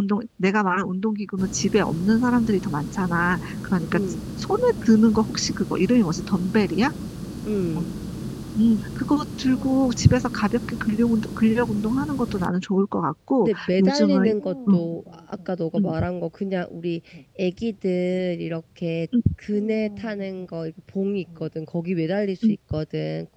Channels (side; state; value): both; identical; correlation 1.00